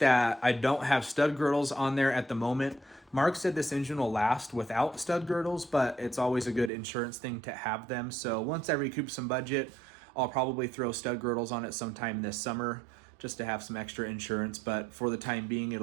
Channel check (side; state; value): left; drops out; at 6.7 s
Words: I don't have stud girdles on there at the moment. Mark said this engine will last without stud girdles, but it's always a good insurance thing to have them. So once I recoup some budget, I'll probably throw stud girdles on it sometime this summer just to have some extra insurance, but for the time being,